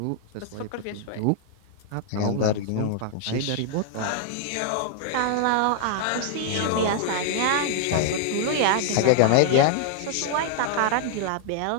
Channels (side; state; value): both; different; correlation -0.01